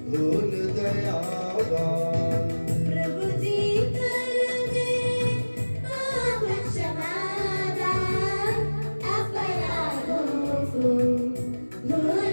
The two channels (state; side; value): inverted; both; correlation -1.00